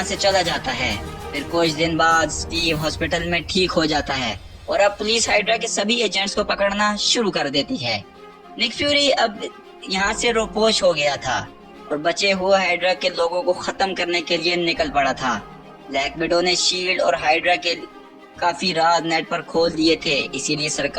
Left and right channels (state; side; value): identical; both; correlation 1.00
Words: से चला जाता है। फिर कुछ दिन बाद स्टीव हॉस्पिटल में ठीक हो जाता है और अब पुलिस हाइड्रा के सभी एजेंट्स को पकड़ना शुरू कर देती है। निक फ्यूरी अब यहाँ से रोपोश हो गया था और बचे हुए हाइड्रा के लोगों को खत्म करने के लिए निकल पड़ा था। ब्लैक विडो ने शील्ड और हाइड्रा के काफी राज नेट पर खोल दिए थे, इसीलिए